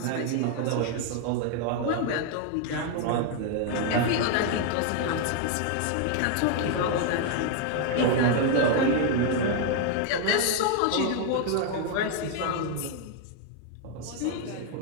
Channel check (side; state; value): both; different; correlation 0.00